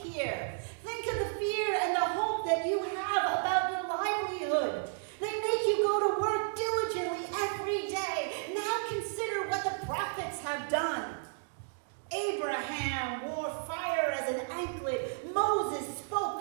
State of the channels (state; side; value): silent; left; digital silence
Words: Think of the fear and the hope that you have about your livelihood. They make you go to work diligently every day. Now consider what the prophets have done. Abraham wore fire as an anklet. Moses